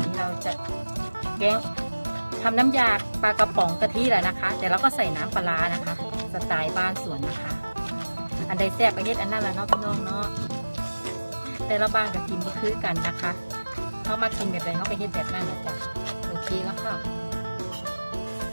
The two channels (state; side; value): inverted; both; correlation -1.00